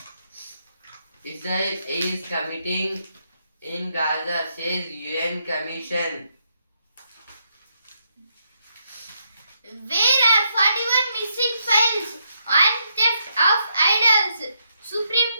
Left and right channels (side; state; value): both; inverted; correlation -0.78